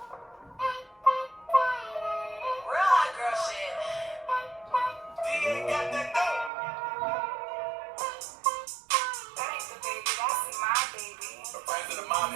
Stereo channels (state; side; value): drops out; left; at 6.5 s